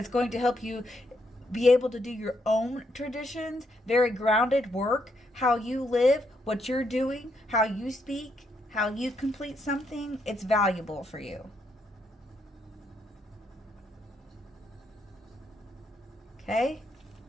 going to help you be able to do your own traditions, very grounded work, how you live, what you're doing, how you speak, how you complete something, it's valuable for you. Okay?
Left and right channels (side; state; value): both; normal; correlation 0.76